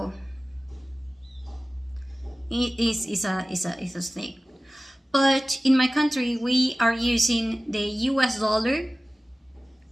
it is a thing. But in my country, we are using the US dollar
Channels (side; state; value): both; normal; correlation 0.97